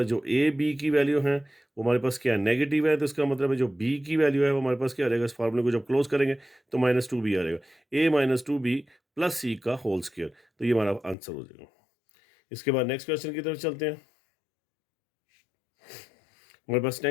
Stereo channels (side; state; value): right; drops out; at 11.2 s